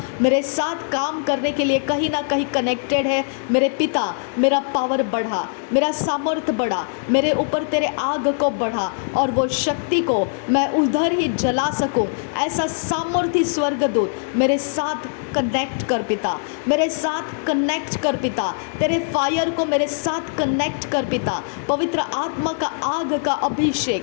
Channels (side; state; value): right; silent; 55 dB below the other